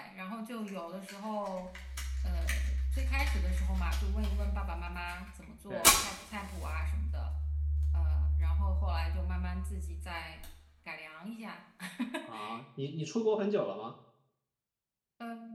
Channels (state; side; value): identical; both; correlation 1.00